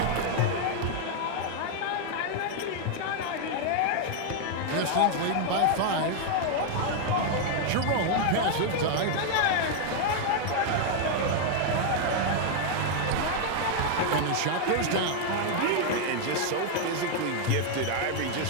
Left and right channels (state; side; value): different; both; correlation 0.00